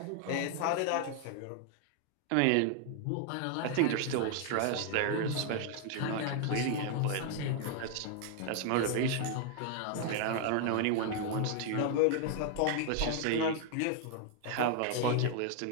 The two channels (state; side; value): different; both; correlation 0.00